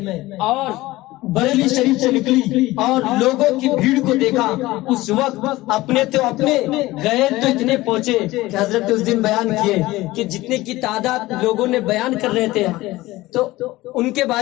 اور بریلی شریف سے نکلی اور لوگوں کی بھیڑ کو دیکھا، اس وقت اپنے غیر تو اتنے پہنچے کہ حضرت اس دن بیان کیے کہ جتنے کی تعداد لوگوں نے بیان کر رہے تھے تو ان کے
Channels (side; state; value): right; quieter; 18.5 dB